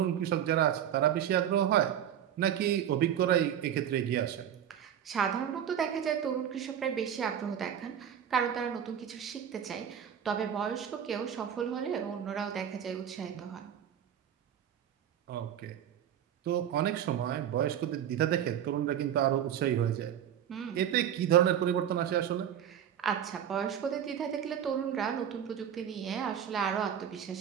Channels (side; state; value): left; quieter; 9.6 dB